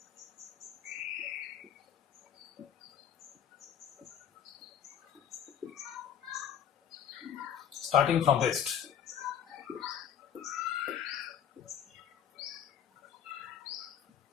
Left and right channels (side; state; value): right; quieter; 9.1 dB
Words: starting from rest.